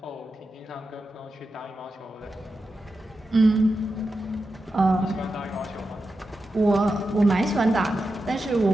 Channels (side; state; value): both; normal; correlation 0.90